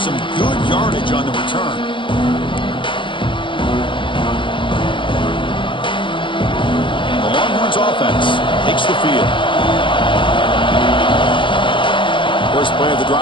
good yardage on the return. The Longhorns offense takes the field. First play of the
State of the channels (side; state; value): right; late; 0.24 ms